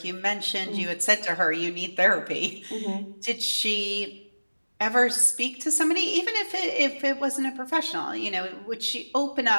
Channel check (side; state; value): both; inverted; correlation -1.00